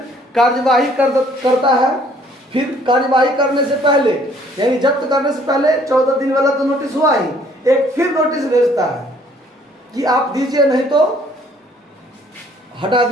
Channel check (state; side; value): normal; both; correlation 0.60